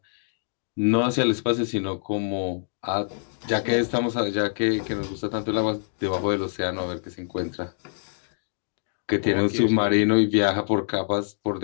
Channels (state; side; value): silent; right; 61 dB below the other